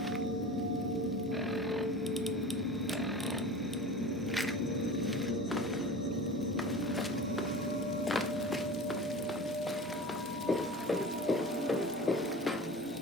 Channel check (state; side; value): normal; both; correlation 0.35